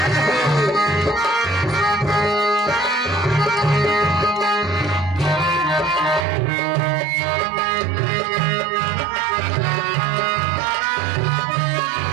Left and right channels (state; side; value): drops out; left; at 6.2 s